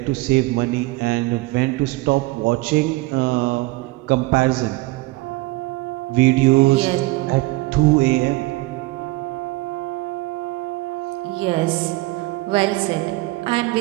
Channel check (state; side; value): quieter; left; 21.1 dB